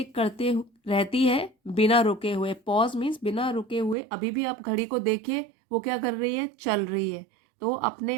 करते रहती है बिना रुके हुए। पॉज मीन्स बिना रुके हुए। अभी भी आप घड़ी को देखिए, वो क्या कर रही है, चल रही है। तो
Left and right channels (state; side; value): drops out; left; at 4.0 s